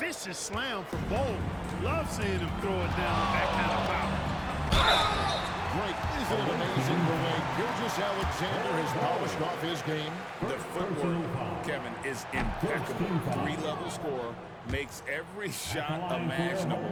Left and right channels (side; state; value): both; identical; correlation 1.00